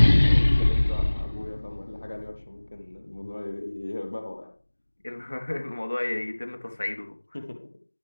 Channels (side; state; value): both; inverted; correlation -1.00